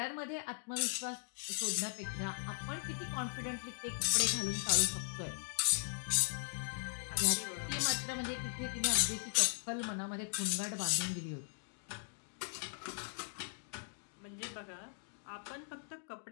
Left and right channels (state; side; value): silent; right; digital silence